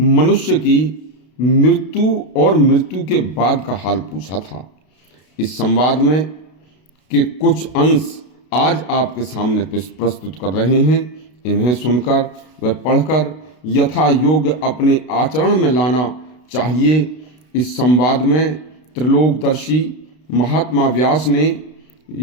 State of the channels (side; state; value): right; late; 32 ms